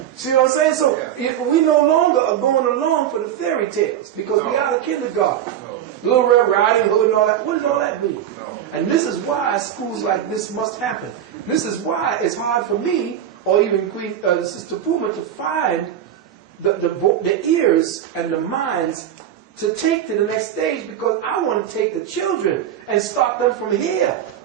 See what I'm saying? So we no longer are going along for the fairy tales because we out of kindergarten. Little Red Riding Hood and all that. What does all that mean? And this is why schools like this must happen. This is why it's hard for me or even Sister Puma to find the ears and the minds to take to the next stage, because I want to take the children and start them from here.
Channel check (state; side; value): quieter; left; 10.2 dB